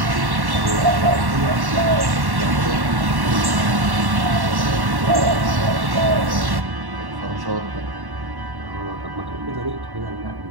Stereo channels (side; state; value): left; late; 1.1 ms